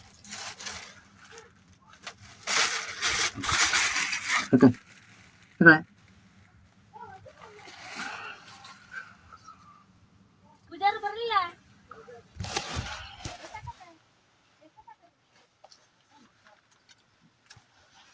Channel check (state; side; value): identical; both; correlation 1.00